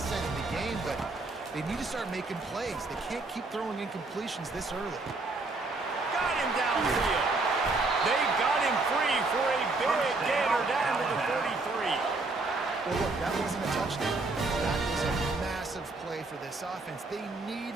in the game, but they need to start making plays. They can't keep throwing incompletions this early. Got him downfield. They've got him free for a big gainer down to the 33. Well, look, that wasn't a touchdown. That was a massive play for this offense. They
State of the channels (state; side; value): quieter; left; 3.4 dB